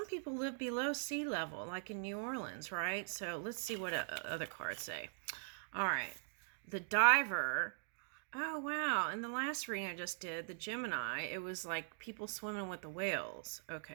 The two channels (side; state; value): left; silent; digital silence